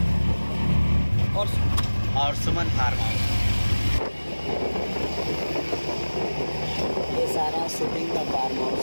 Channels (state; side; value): inverted; both; correlation -1.00